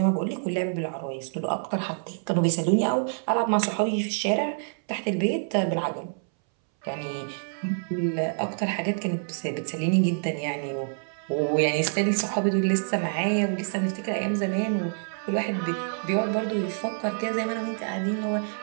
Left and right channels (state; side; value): silent; left; 60 dB below the other